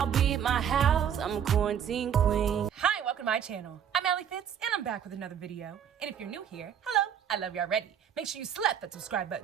be at my house. I'm a quarantine queen. Hi, welcome to my channel. I'm Alli Fitz, and I'm back with another video. And if you're new here, hello, I love you already. Make sure you slap that subscribe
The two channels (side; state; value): left; quieter; 8.7 dB